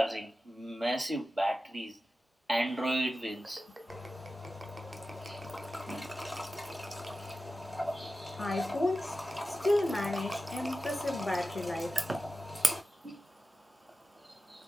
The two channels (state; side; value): normal; both; correlation 0.94